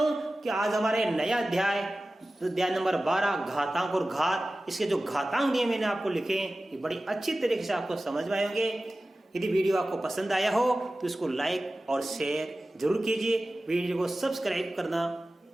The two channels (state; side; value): normal; both; correlation 0.96